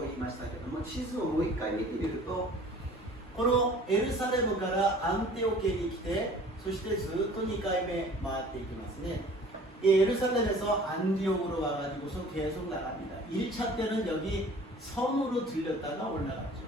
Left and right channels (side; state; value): both; normal; correlation 0.48